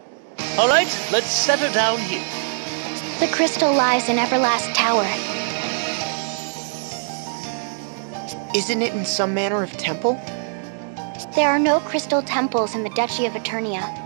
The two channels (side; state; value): left; silent; digital silence